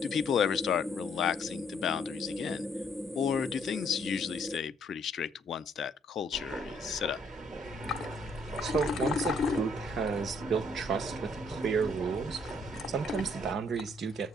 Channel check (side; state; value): both; normal; correlation 0.67